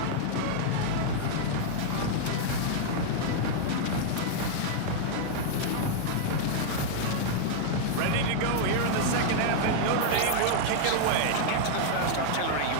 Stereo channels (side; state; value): both; different; correlation -0.01